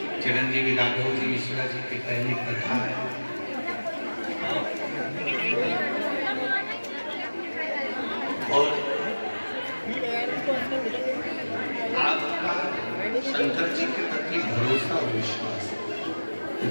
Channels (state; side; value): inverted; both; correlation -1.00